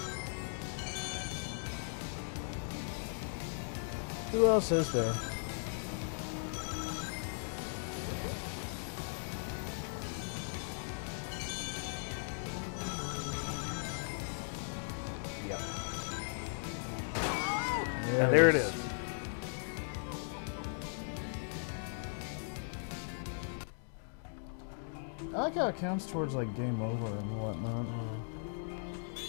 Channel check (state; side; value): silent; right; digital silence